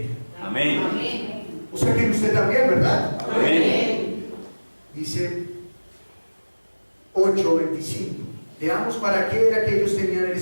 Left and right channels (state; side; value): inverted; both; correlation -1.00